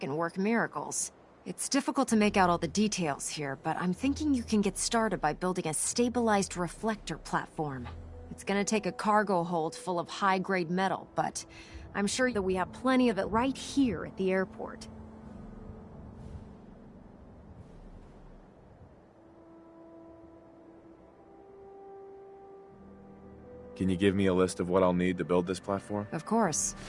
work miracles. It's difficult to make out all the details here, but I'm thinking you can get started by building a stabilized reflector platform. It's gonna take a cargo hold full of high-grade metal, but I'm sure that we have plenty of it right here at the airport. Can you give me a list of what I'll need to build this platform? Of course.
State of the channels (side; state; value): both; identical; correlation 1.00